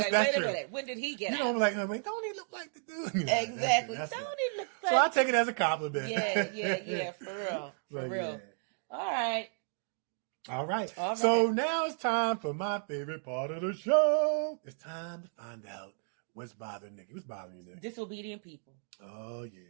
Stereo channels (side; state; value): left; silent; 56 dB below the other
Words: Wait a minute, when did he get? You know, I'm like, wait, don't he look like the dude? Exactly. Don't he look like? So I take it as a compliment. Yeah, for real. Yeah. All right. So now it's time for my favorite part of the show. It's time to find out what's bothering Nikee. What's bothering you, Nikee? Disobedient people. Oh, yeah.